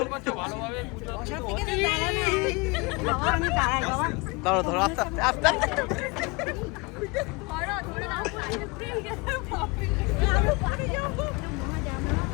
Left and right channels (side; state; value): right; quieter; 27.5 dB